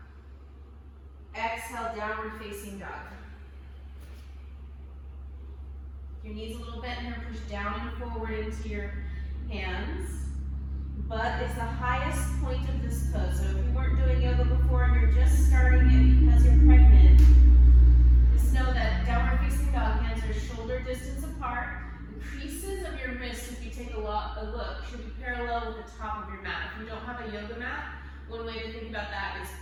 Exhale, downward facing dog. Your knees a little bent here. Push down and forward into your hands. Butt is the highest point of this pose. So if you weren't doing yoga before and you're just starting it because you're pregnant, just know that downward facing dog, hands are shoulder distance apart. The creases of your wrists, if you take a look, should be parallel with the top of your mat. If you don't have a yoga mat, one way to think about that is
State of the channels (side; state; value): both; identical; correlation 1.00